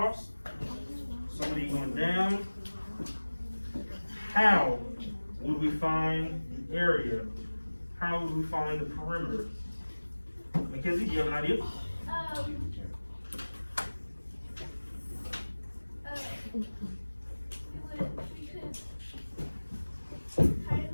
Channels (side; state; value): both; inverted; correlation -1.00